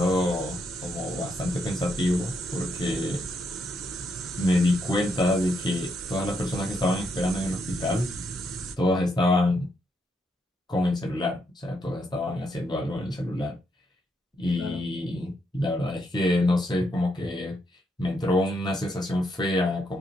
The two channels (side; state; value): both; normal; correlation 0.78